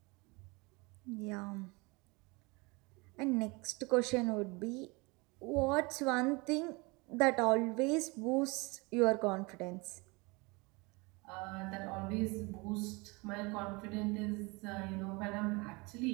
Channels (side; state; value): left; quieter; 26.7 dB